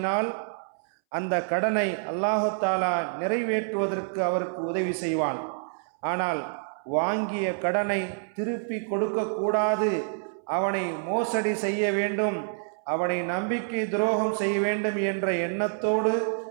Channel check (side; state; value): left; silent; 60 dB below the other